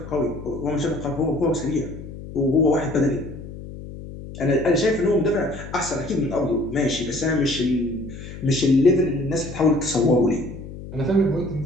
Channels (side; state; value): left; noise; hum, 12 dB below the sound